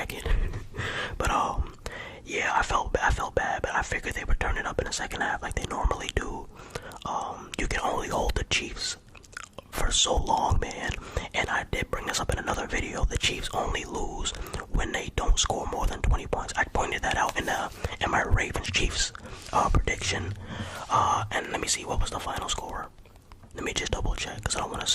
But yeah, I felt bad, but I figured they would turn it up in the second half like they normally do. You can only hold the Chiefs for so long, man. And I did bring this up in another video. The Chiefs only lose when they don't score more than 20 points. I pointed that out in my Ravens-Chiefs prediction. And let me see, what was the final score? Let me just double check, because I don't want to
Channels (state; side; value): identical; both; correlation 1.00